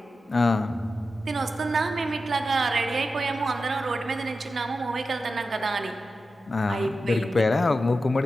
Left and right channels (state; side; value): normal; both; correlation 0.91